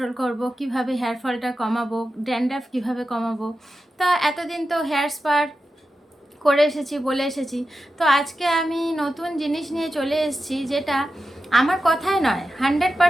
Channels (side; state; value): both; normal; correlation 0.91